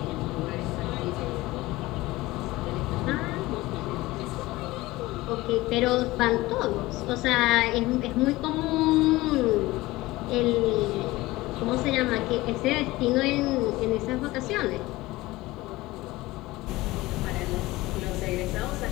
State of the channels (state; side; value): quieter; right; 19.3 dB